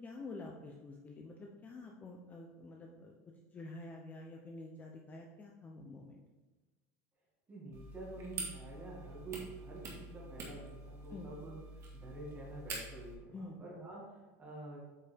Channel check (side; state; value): both; normal; correlation 0.37